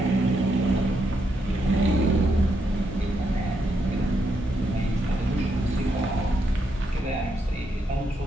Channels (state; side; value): normal; both; correlation 0.80